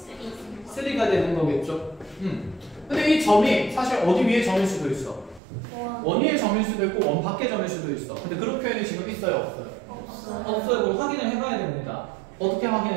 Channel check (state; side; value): drops out; left; at 5.4 s